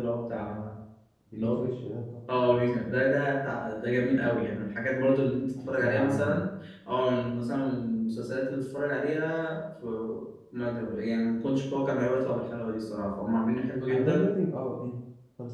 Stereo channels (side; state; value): both; identical; correlation 1.00